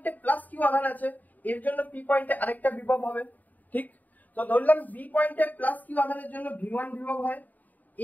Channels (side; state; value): right; late; 0.081 ms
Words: প্লাস কিউ আধান আছে, এর জন্য পি পয়েন্টে আরেকটা বিভব হবে। ঠিক, তো ধরলাম বি পয়েন্টে প্লাস কিউ আধানের জন্য ভি1 বিভব হয়,